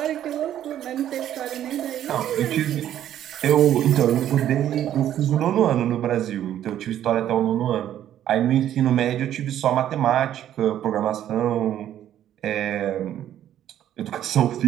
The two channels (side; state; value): left; quieter; 11.3 dB